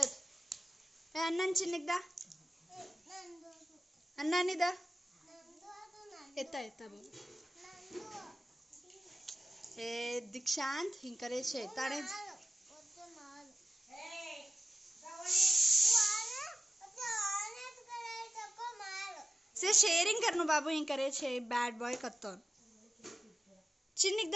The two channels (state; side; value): normal; both; correlation 0.94